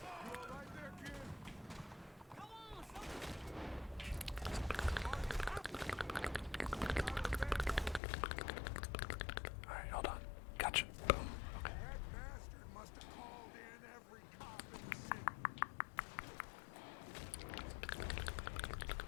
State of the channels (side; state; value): right; drops out; at 8.0 s